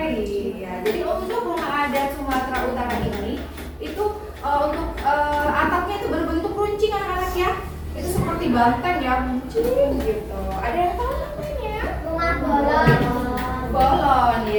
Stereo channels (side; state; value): both; identical; correlation 1.00